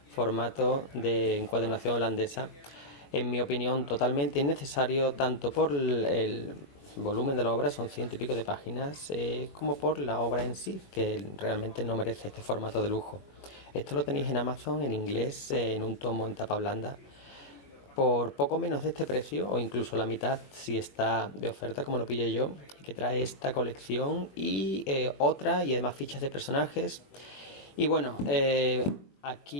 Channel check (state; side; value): late; right; 21 ms